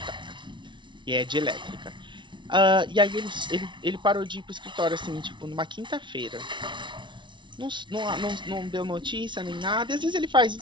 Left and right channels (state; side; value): late; left; 0.23 ms